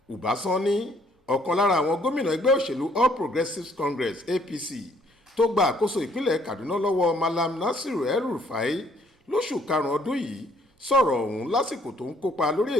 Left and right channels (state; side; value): normal; both; correlation 0.64